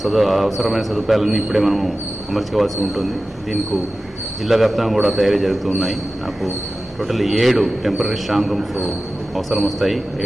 అవసరమైన సదుపాయాలన్నీ ఇప్పుడే మనము అమర్చుకోవాల్సి ఉంటుంది. దీనికి జిల్లా వ్యాప్తంగా కూడా తయారీ జరుగుతూ ఉన్నాయి. నాకు టోటల్ 7 టెంపరీ స్ట్రాంగ్ రూమ్స్ అవసరం వస్తాయి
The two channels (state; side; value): normal; both; correlation 0.95